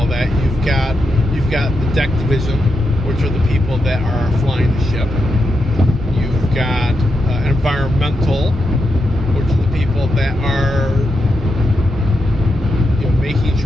that, you've got the deck division, which are the people that are flying the ship. You've got environmental, which are the people that are making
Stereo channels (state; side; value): normal; both; correlation 0.85